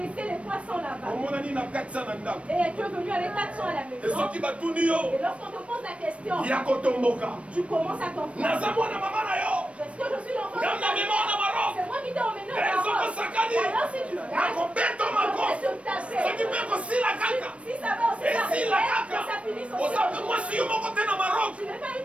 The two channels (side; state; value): left; late; 0.062 ms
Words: les 300 là-bas. Omonani na 400 na ndako. Et tu es venu avec 400 à la maison. Esoki batuni yo. Et lorsqu'on te pose la question, Ya kotomboka. tu commences à comprendre. Naza mwana mama na yo. Est-ce que je suis l'enfant de Gamna ta mema na maro. C'est moi qui t'ai emmené au Ezoko Maroc. sakani. Alors si tu gagnes, Nakobeto je mako. vais te taper. Soki pe kosila kaka. Si ça va aussi Esila t'arriver, kaka. que ça finisse aussi. Osape mwasi yo moko te na Maroc. Tu n'es pas